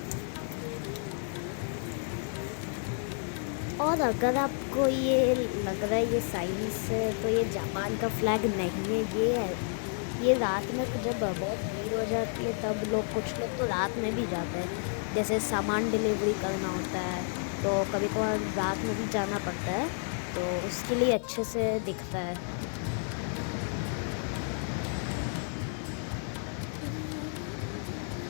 और अगर आपको ये लग रहा है ये साइंस से, तो ये जापान का फ्लैग नहीं है, ये है। ये रात में जब बहुत भीड़ हो जाती है तब लोग, कुछ लोग तो रात में भी जाते हैं, जैसे सामान डिलीवरी करना होता है तो कभी कभार रात में भी जाना पड़ता है, तो उसके लिए अच्छे से दिखता है।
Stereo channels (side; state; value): right; silent; 57 dB below the other